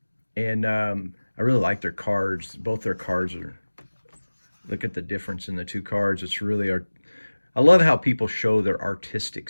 really like their cards. Both their cards are, look at the difference in the two cards. It's really, I love how people show their artistic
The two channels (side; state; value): both; inverted; correlation -1.00